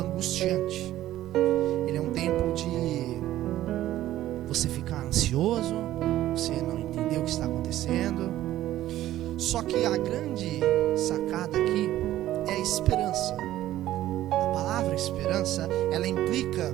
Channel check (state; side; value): quieter; left; 14.0 dB